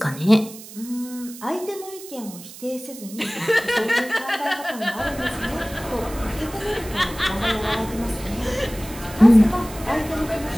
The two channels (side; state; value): right; noise; hiss, 16 dB below the sound